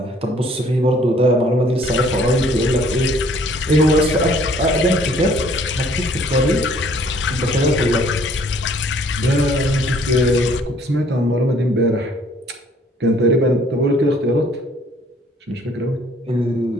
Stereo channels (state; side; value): normal; both; correlation 0.59